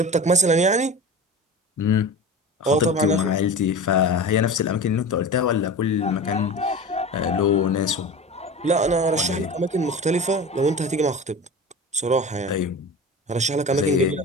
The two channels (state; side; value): normal; both; correlation 0.32